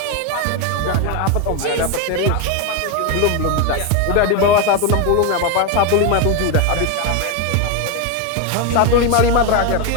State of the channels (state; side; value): different; both; correlation 0.02